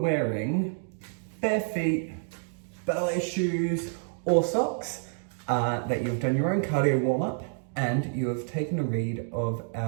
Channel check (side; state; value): left; silent; digital silence